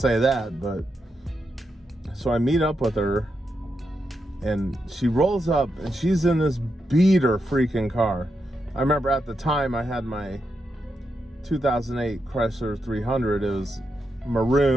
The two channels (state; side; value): normal; both; correlation 0.85